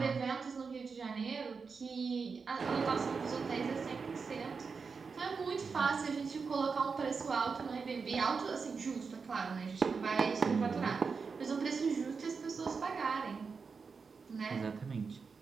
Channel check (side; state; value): left; quieter; 5.1 dB